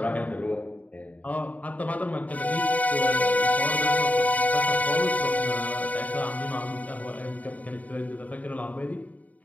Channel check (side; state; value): right; late; 0.072 ms